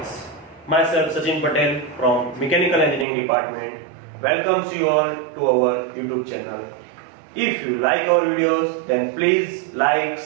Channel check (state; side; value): drops out; left; at 3.1 s